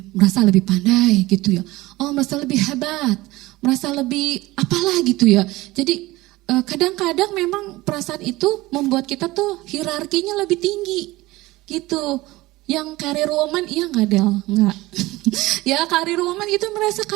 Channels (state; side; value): quieter; left; 19.3 dB